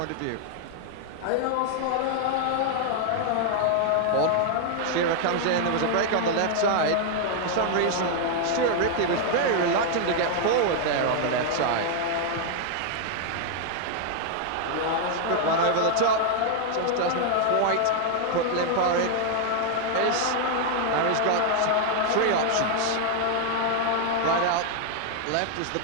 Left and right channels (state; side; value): different; both; correlation 0.00